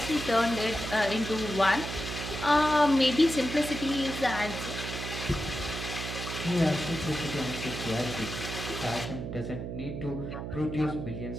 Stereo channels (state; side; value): noise; right; hum, 6 dB below the sound